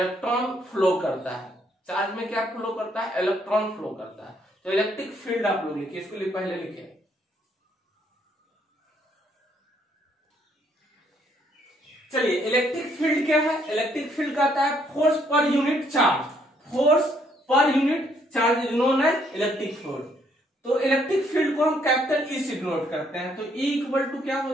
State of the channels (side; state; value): both; normal; correlation 0.69